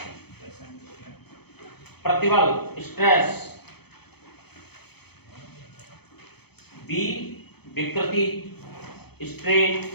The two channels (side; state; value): right; late; 0.97 ms